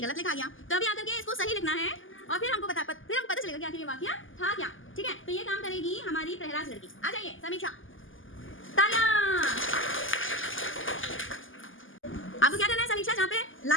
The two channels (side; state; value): right; late; 0.58 ms